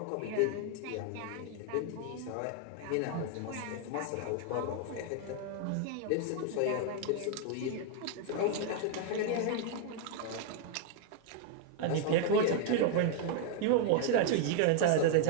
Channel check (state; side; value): different; both; correlation 0.00